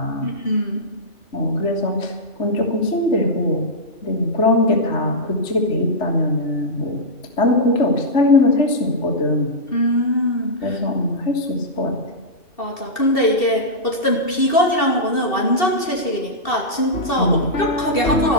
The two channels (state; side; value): late; right; 2.7 ms